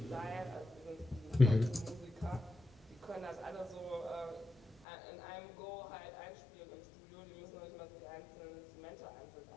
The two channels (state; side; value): drops out; right; at 4.9 s